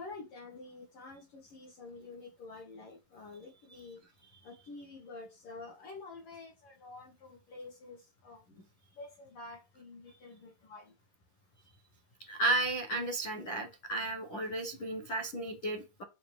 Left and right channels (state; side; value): late; right; 11 ms